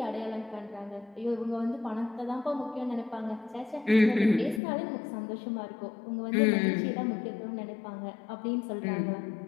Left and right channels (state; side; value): drops out; right; at 4.6 s